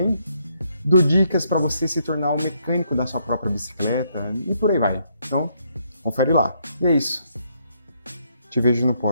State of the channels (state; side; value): inverted; both; correlation -0.74